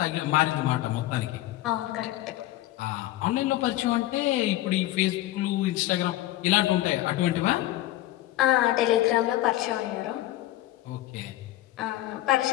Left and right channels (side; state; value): right; quieter; 15.7 dB